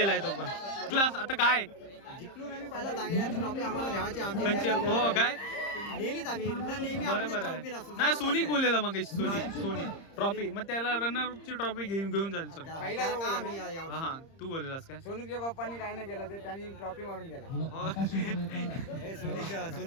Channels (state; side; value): late; right; 30 ms